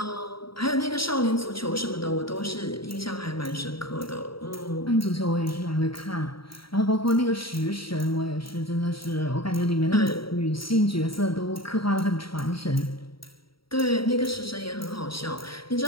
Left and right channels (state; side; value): late; right; 0.75 ms